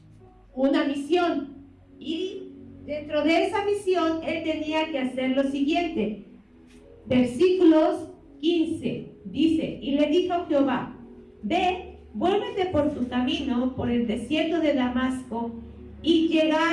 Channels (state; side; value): identical; both; correlation 1.00